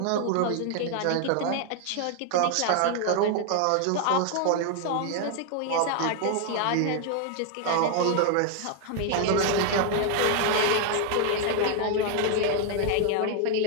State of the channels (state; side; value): different; both; correlation 0.00